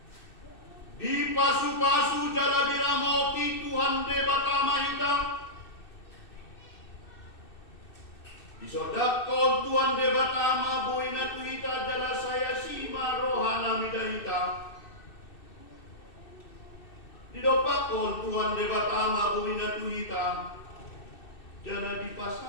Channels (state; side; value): late; right; 2.6 ms